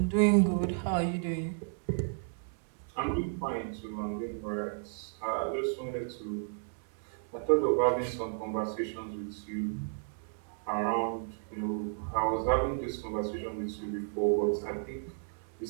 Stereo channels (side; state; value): left; silent; 56 dB below the other